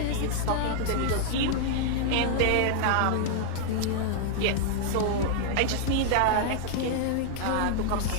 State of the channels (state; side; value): different; both; correlation -0.01